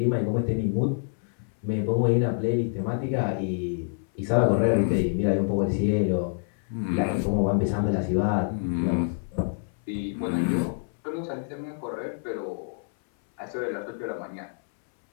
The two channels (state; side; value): silent; right; 60 dB below the other